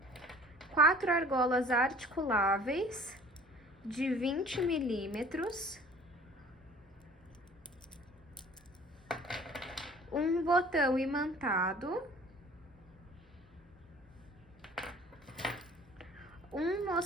4 argolas articuláveis de 20 milímetros, um botão imantado, um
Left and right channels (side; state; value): both; normal; correlation 0.48